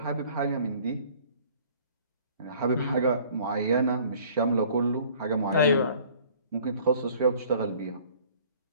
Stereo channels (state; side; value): inverted; both; correlation -0.53